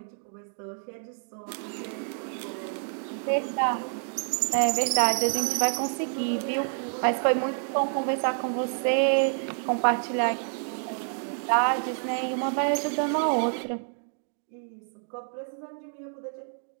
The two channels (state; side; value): silent; left; 59 dB below the other